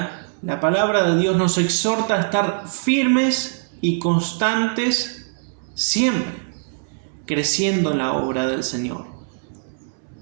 la palabra de Dios, nos exhorta a estar firmes y constantes siempre, creciendo en la obra del Señor,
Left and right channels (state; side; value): silent; left; 64 dB below the other